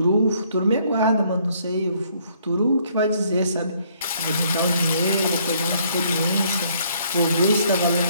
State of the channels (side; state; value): both; inverted; correlation -0.65